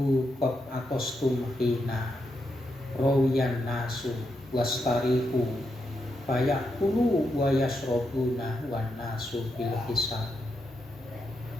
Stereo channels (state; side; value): normal; both; correlation 0.83